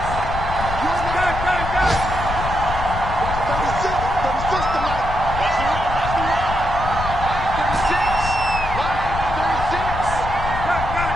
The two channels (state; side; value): noise; left; rumble, 6 dB below the sound